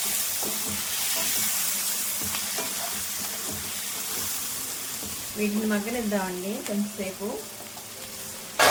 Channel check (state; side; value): identical; both; correlation 1.00